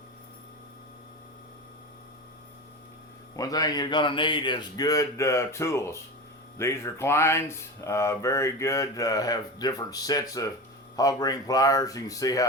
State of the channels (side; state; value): both; normal; correlation 0.26